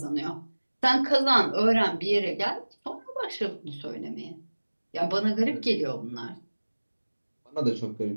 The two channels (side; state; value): both; inverted; correlation -1.00